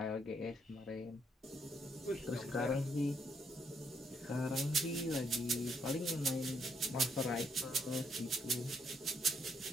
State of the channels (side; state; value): both; normal; correlation 0.72